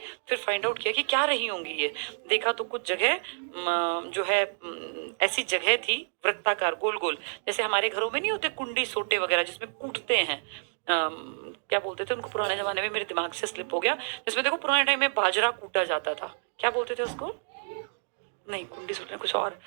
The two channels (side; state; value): left; silent; digital silence